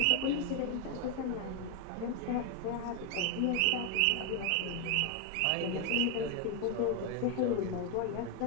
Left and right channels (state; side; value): different; both; correlation 0.01